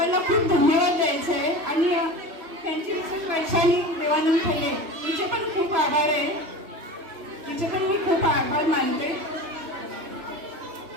खूप धन्यवाद द्यायचे आहे, आणि त्यांची विशेष वैशाली देवानंद खेले तिचे पण खूप आभार आहे. तिचे पण मी खूप आभार मानते.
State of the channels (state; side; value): late; left; 3.1 ms